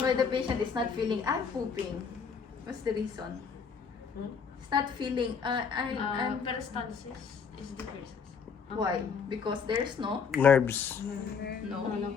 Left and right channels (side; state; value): right; quieter; 6.0 dB